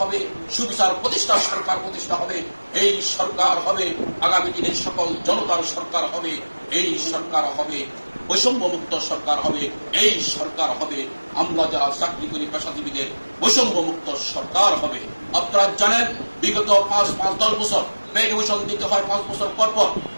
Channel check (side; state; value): both; inverted; correlation -1.00